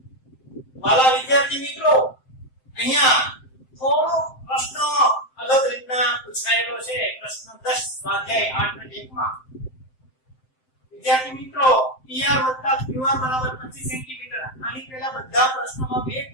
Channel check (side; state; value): right; late; 7.7 ms